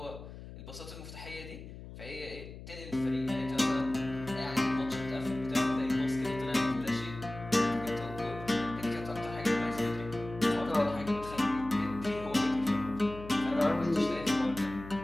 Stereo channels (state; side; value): noise; left; hum, 13 dB below the sound